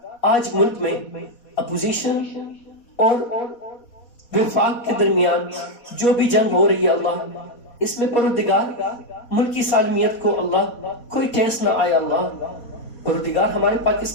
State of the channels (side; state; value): right; late; 4.2 ms